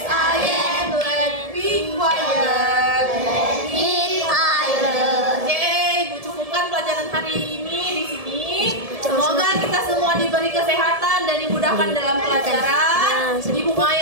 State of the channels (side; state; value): left; late; 1.7 ms